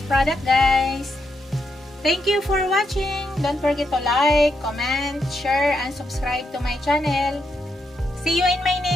product guys. Thank you for watching. Don't forget to like, comment, share, and subscribe to my channel. See you in my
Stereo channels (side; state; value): both; normal; correlation 0.81